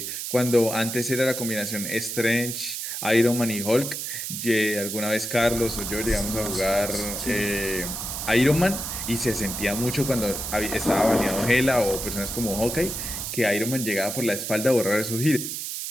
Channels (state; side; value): noise; right; hiss, 5 dB below the sound